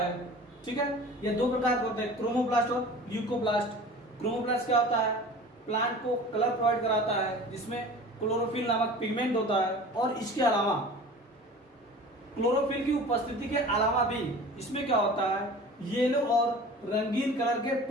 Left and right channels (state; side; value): normal; both; correlation 0.40